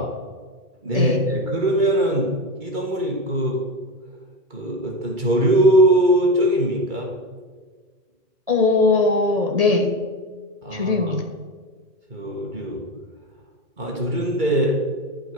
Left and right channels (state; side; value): late; left; 2.3 ms